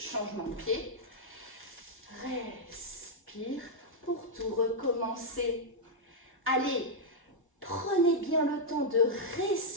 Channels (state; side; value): normal; both; correlation -0.04